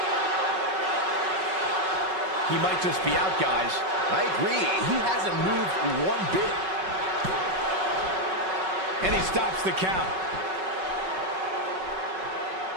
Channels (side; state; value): left; late; 5.3 ms